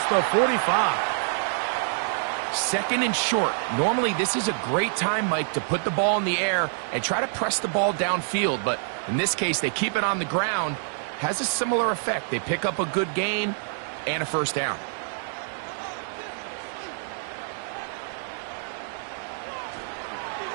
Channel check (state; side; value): silent; left; 61 dB below the other